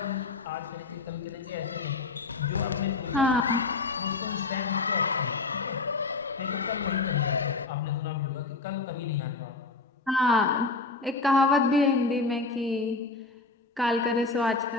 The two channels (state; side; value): quieter; right; 3.8 dB